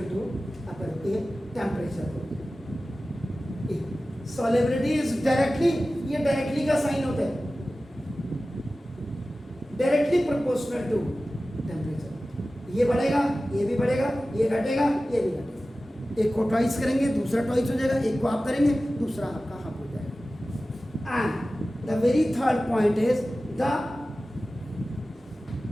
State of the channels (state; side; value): normal; both; correlation 0.96